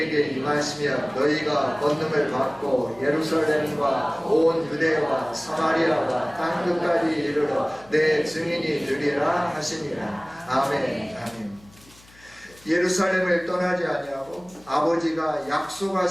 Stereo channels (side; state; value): left; noise; hum, 26 dB below the sound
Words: 임하시면 너희가 권능을 받고 예루살렘과 온 유대와 사마리아와 땅끝까지 이르러 내 증인이 되리라 하시니라. 아멘. 아멘. 예루살렘을 떠나지 아니하고 아버지가